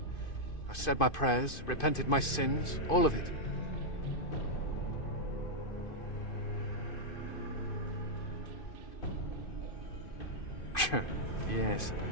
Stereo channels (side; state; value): right; late; 2.5 ms